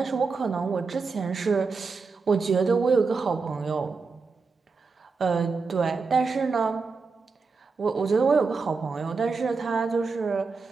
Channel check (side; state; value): left; quieter; 4.6 dB